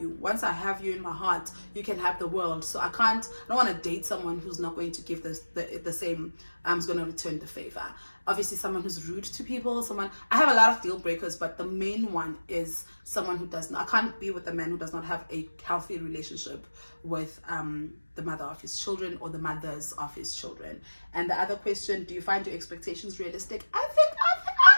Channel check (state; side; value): inverted; both; correlation -1.00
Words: you, once I have you in my heart, you can have the world. So I don't want to date someone who's not going to give the same, who's going to return the favor. Obviously, someone who's rude to people, I have a lot of deal breakers, but the main one is someone who does not, I can't be with a man who does not have a healthy relationship with the mother of his children, or the mothers of his children. And the other question, do you find your expectations realistic? I